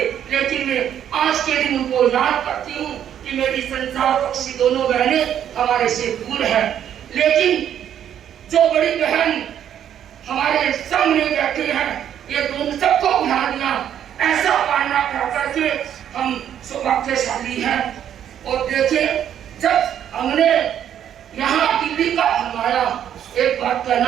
लेकिन मैं आज के दिन उनको याद करती हूँ कि मेरी संसार पक्षी दोनों बहनें हमारे से दूर है, लेकिन जो बड़ी बहन हमारे सामने बैठे हैं ये दोनों सबको बुला दिया, ऐसा पालना कर करके हम सौभाग्यशाली हैं। और देखिए जब हमने यहाँ दिल्ली का हमारा एक बात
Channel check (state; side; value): quieter; left; 9.9 dB